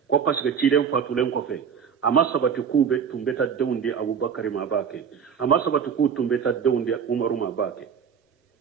ko parce que ciden fatulen ko fe amma sabati ku be tumbeta dawndi abubakar ma bake amma sabati ku tumbeta dawndi umaru ma bake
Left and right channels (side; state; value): left; quieter; 7.1 dB